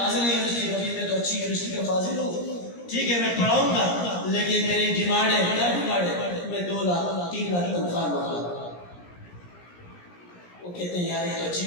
یونیورسٹی کبھی میں تو اچھی یونیورسٹی کا فاضل ہوں، ٹھیک ہے میں پڑھاؤں گا، لیکن میری ڈیمانڈ ہے، کیا ڈیمانڈ ہے؟ میں 2 لاکھ 3 لاکھ تنخواہ مانگا۔ وہ کہتے ہیں یار یہ تو اچھی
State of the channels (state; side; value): late; right; 17 ms